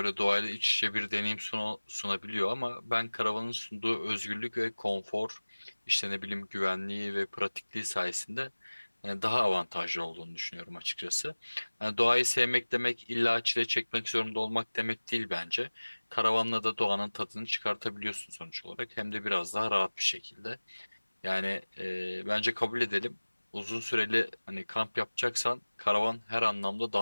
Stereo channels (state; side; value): inverted; both; correlation -1.00